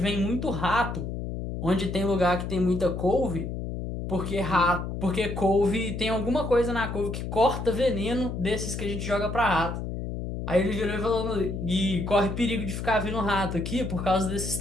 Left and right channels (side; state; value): left; noise; hum, 5 dB below the sound